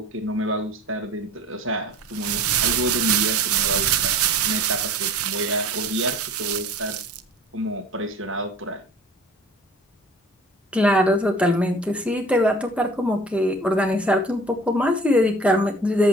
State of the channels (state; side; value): normal; both; correlation 0.45